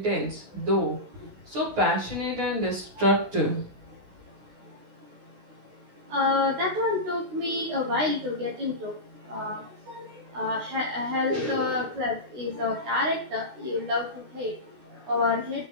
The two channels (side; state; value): left; late; 16 ms